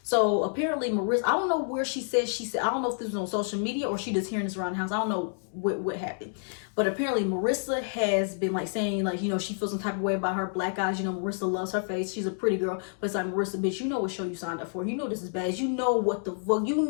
So apparently Marissa, I don't know where she said, I don't know if this was on social media or she just hearing this around the house. I don't know what happened. But apparently Marissa has been like saying, like, she feels some type of way about her black eyes. Marissa loves her face. She's a pretty girl. But it's like, Marissa, bitch, you know what show you signed up for. You know this is Baddies. You know what the fuck. You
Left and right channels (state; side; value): silent; right; digital silence